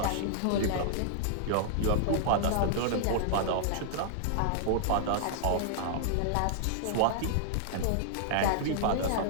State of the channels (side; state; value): both; different; correlation -0.01